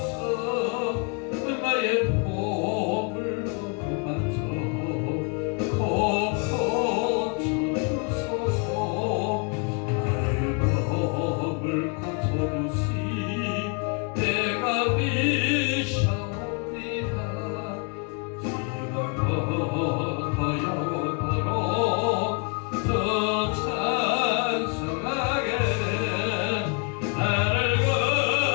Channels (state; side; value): quieter; right; 35.6 dB